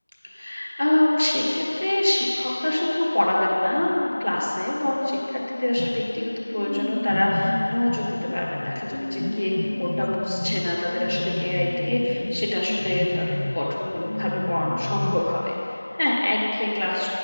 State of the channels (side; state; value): both; inverted; correlation -1.00